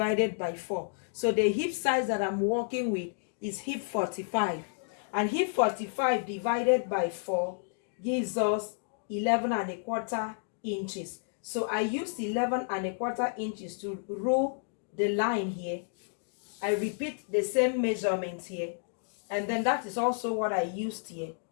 by 4. So the hip size that I'm working with is hip 45. And hip 45 divided by 4 gives us 11¼ inches. So I used 11¼ inches to rule the line here. I repeat the same measurements here, and then that is also what I used here.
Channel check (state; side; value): silent; right; digital silence